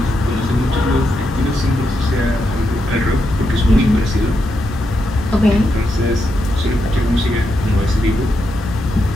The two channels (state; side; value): normal; both; correlation 0.83